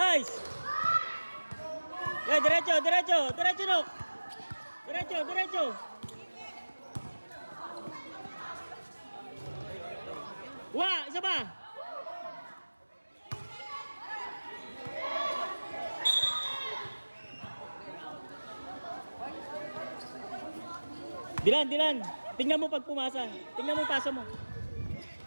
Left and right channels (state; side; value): inverted; both; correlation -1.00